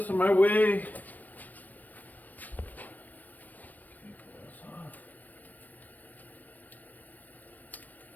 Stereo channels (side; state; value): right; late; 0.084 ms